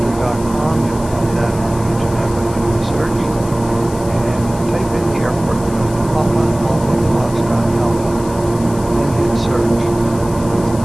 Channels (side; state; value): left; noise; hiss, 17 dB below the sound